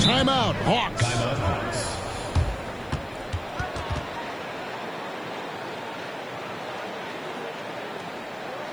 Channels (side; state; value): left; noise; hiss, 28 dB below the sound